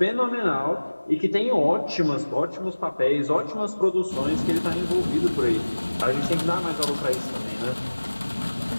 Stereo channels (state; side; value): inverted; both; correlation -1.00